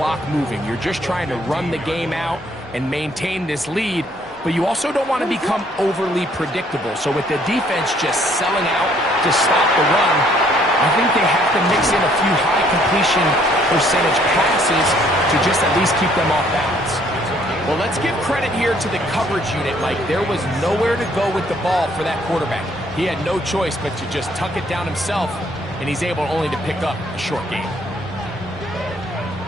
moving. You're just trying to run the game out and maintain this lead, but you also don't want to become overly predictable. So with the defense just selling out to stop the run, I think they have to mix in a few high completion percentage passes to just at least keep them off balance. Well, let's give credit here to the coverage unit, Mike. There was nowhere to go with the ball for that quarterback. He had no choice but to just tuck it down himself, and he's able only to pick up a short gain.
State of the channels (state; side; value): normal; both; correlation 0.64